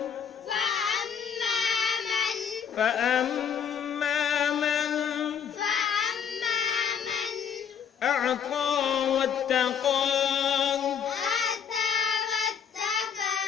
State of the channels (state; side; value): quieter; right; 7.5 dB